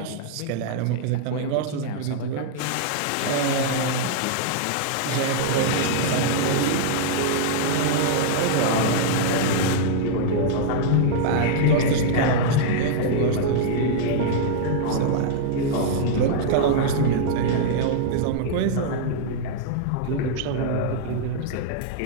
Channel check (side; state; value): both; different; correlation -0.01